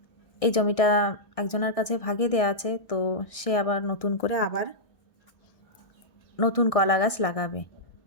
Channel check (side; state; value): right; late; 1.6 ms